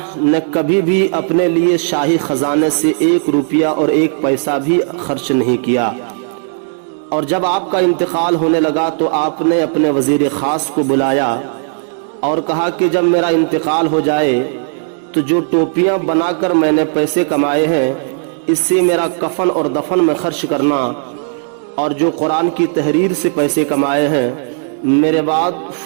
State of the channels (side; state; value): left; silent; digital silence